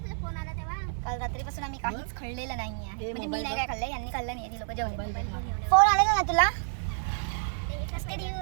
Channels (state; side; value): silent; left; digital silence